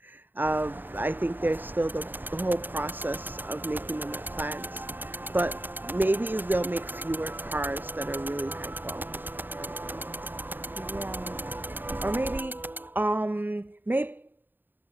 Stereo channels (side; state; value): left; late; 0.092 ms